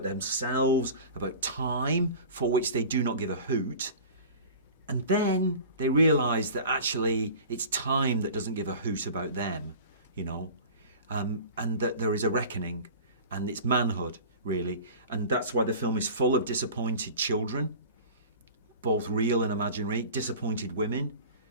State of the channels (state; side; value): inverted; both; correlation -0.39